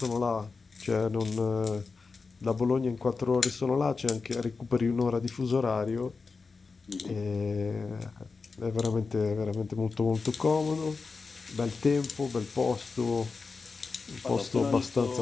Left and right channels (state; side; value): quieter; right; 4.5 dB